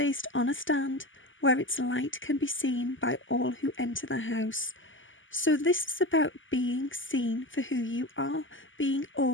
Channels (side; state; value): right; late; 0.57 ms